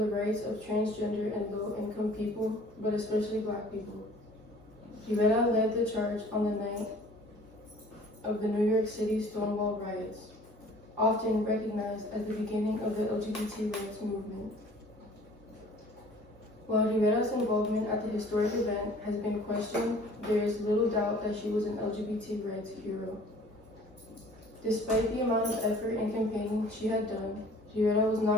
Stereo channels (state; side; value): normal; both; correlation 0.50